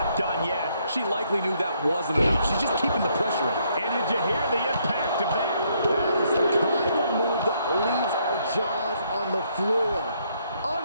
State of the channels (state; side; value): inverted; both; correlation -0.71